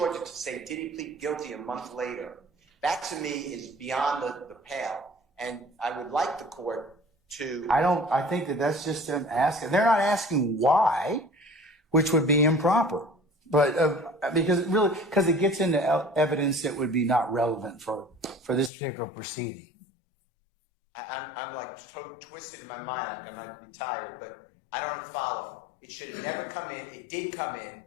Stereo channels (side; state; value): right; drops out; at 18.7 s